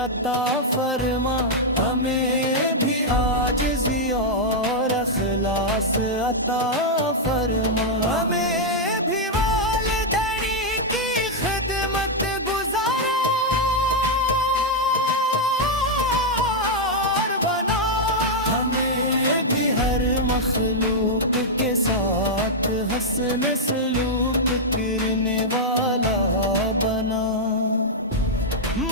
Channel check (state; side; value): normal; both; correlation -0.04